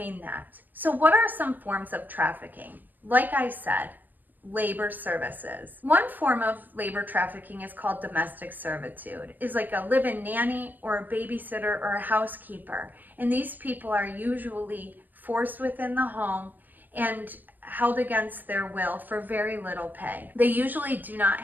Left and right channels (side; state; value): left; late; 0.086 ms